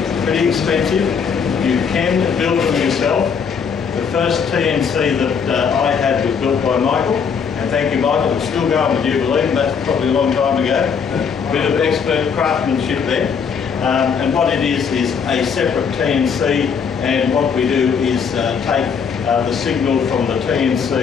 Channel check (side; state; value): right; quieter; 6.4 dB